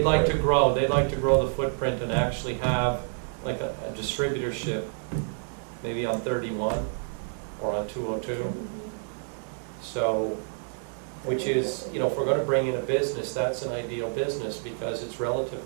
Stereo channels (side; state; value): left; silent; 59 dB below the other